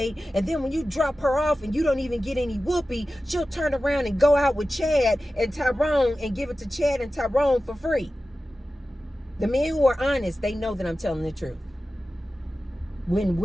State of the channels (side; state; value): both; normal; correlation 0.94